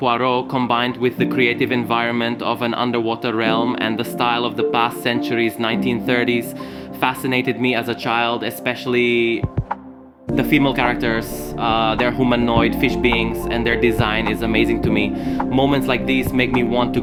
combined with the creative environment of an underwater realm and the style of the past century's 1930s fascinated me as a child, especially the female characters. They're humanoid fish beings and their design is amazing to me. Moments like these make me want to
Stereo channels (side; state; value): both; identical; correlation 1.00